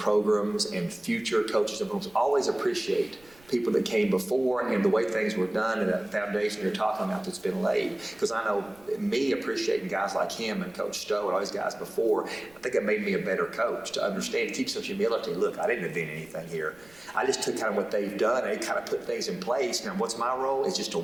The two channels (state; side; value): noise; right; rumble, 28 dB below the sound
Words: and future coaches and programs always appreciate people that came before and the way things were done and that foundation you're talking about that's been laid. Because I know me appreciating guys like him and Coach Stowe and all these guys before, I think it made me a better coach to understand, to keep some humility. Look, I didn't invent anything here. I just took kind of what they've done and kind of put things in place. Now, what's my role? Is just to